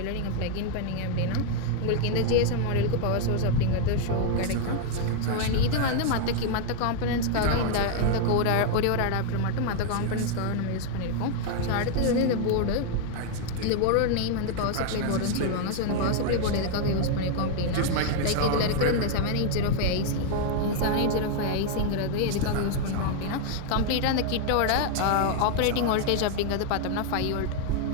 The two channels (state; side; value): different; both; correlation 0.00